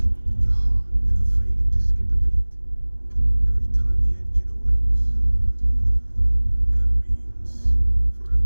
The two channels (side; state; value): both; inverted; correlation -1.00